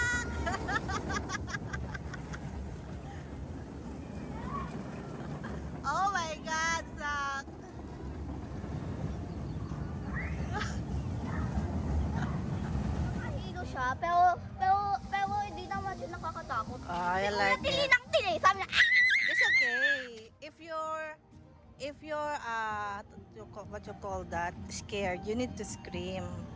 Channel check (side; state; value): both; identical; correlation 1.00